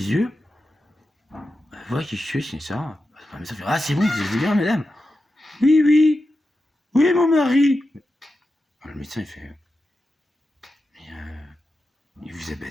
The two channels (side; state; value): both; normal; correlation 0.90